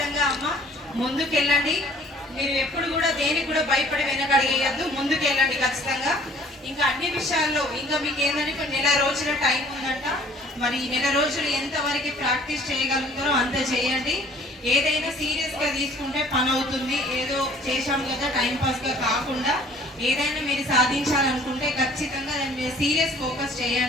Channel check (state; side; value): normal; both; correlation 0.54